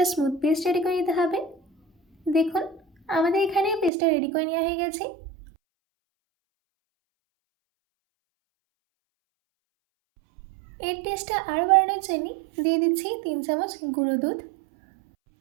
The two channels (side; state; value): left; drops out; at 3.9 s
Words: স্মুথ পেস্ট রেডি করে নিতে হবে। দেখুন আমাদের এখানে পেস্টটা রেডি করে নেওয়া হয়ে গেছে। এর টেস্টটা আরও বাড়ানোর জন্য দিয়ে দিচ্ছি 3 চামচ গুঁড়ো দুধ।